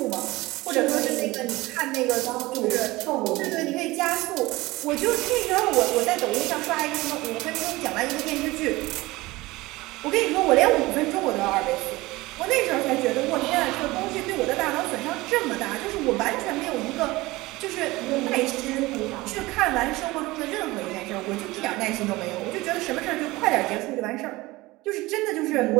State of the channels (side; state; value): left; quieter; 20.3 dB